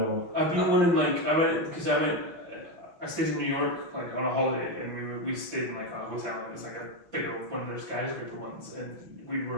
I've been one in I stayed in New York on a holiday, and we stayed in a hotel. It was a bigger one of their skyscraper ones, and we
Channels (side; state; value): left; late; 6.2 ms